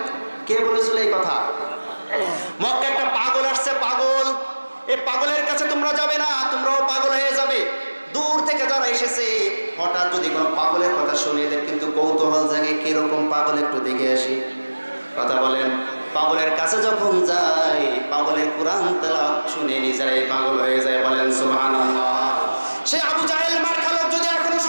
কে বলেছিল এই কথা? মক্কায় একটা পাগল আসছে, পাগল, এই পাগলের কাছে তোমরা যাবে না, তোমরাও পাগল হয়ে যাবে। দূর থেকে যারা এসেছে, হঠাৎ যদি কোনো পাগলের কথা শুনে এদের কিন্তু কৌতূহল জাগে, কিরকম পাগল একটু দেখে আসি। কথা বলেন। পাগলের কাছে যখন যায়, পাগলের কোরআন তেলাওয়াত শুনে নিজেরাই পাগল হয়ে যায়। বলেন সুবহানাল্লাহ। সে আবু জাহেল মার খালক যদি এখনো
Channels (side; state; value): both; inverted; correlation -1.00